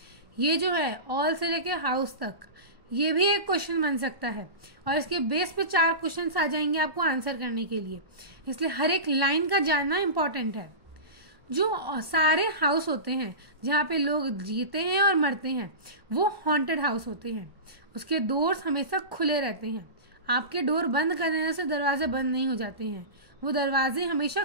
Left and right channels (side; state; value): left; late; 1.1 ms